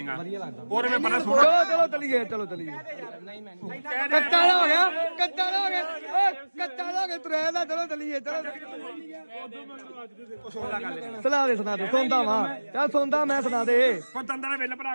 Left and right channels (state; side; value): inverted; both; correlation -1.00